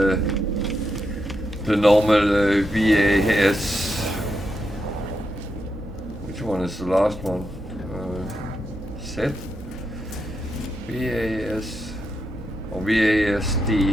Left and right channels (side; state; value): both; normal; correlation 0.84